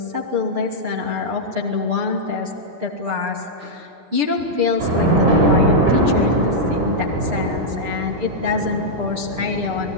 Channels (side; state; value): left; late; 6.7 ms